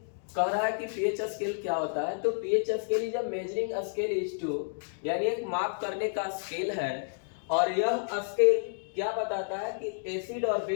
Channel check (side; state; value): right; silent; digital silence